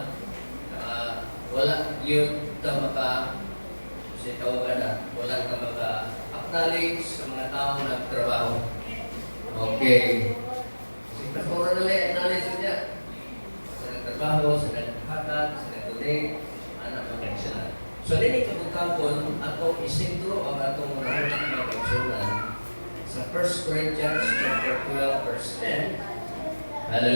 Wala yun ka wala ka maka-acknowledge sa mga taong nagtrabaho. Okay. Si Pastor na lang, acknowledge niya. Sa nagtrabaho, sa naghatag, sa nag-donate, anak mag-aksyonan. So, din ikabutangkon, atong isintro ang atong nahulang mag-aksyonan sa 1 Corinthians chapter 12, verse 10.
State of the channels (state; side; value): inverted; both; correlation -1.00